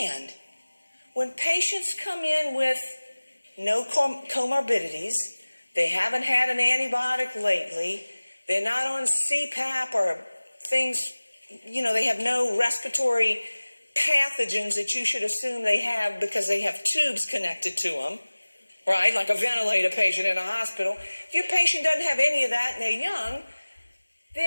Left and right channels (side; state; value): both; inverted; correlation -1.00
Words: when patients come in with no comorbidities, they haven't had an antibiotic lately, they're not on CPAP or things, you know, they have no respiratory pathogens that you should assume they have because they have tubes connected to them, right? Like a ventilator patient in a hospital. If your patient doesn't have any of that and they're young,